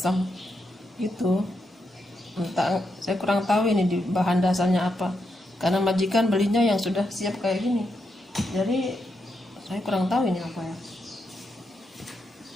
gitu. Entah, saya kurang tahu ini di bahan dasarnya apa, karena majikan belinya yang sudah siap kayak gini, jadi saya kurang tahu ini apa ya.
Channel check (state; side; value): normal; both; correlation 0.83